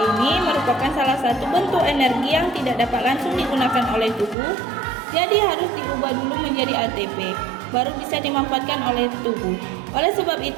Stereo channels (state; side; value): drops out; left; at 4.4 s